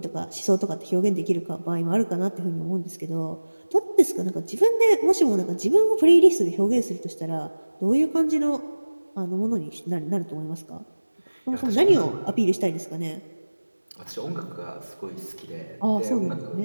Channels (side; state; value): both; inverted; correlation -1.00